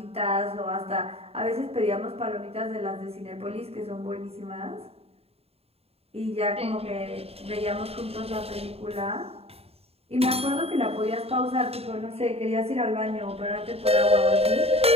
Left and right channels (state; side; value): late; left; 0.29 ms